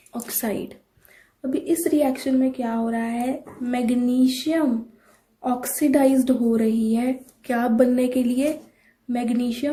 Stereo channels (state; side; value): identical; both; correlation 1.00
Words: oxide. अभी इस रिएक्शन में क्या हो रहा है. मैग्नीशियम ऑक्सीडाइज्ड हो रही है. क्या बनने के लिए.